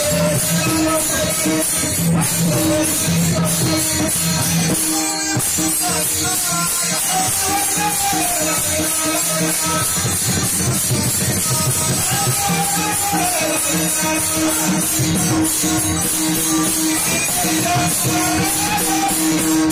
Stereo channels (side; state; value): both; identical; correlation 1.00